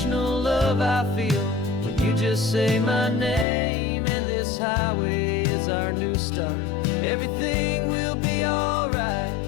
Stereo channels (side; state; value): right; drops out; at 3.5 s